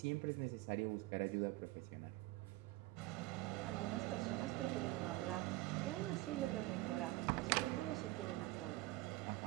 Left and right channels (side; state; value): left; quieter; 19.2 dB